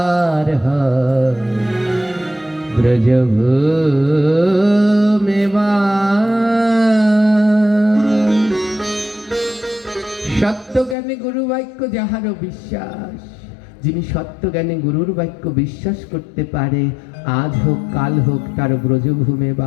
ব্রজভূমে বাস। সত্যজ্ঞানে গুরু বাক্য যাহার বিশ্বাস, যিনি সত্যজ্ঞানে গুরুর বাক্য বিশ্বাস করতে পারে, আজ হোক কাল হোক তার ব্রজভূমে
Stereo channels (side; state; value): right; drops out; at 11.0 s